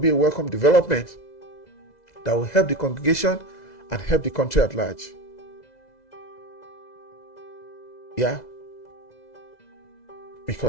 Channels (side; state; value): right; late; 2.0 ms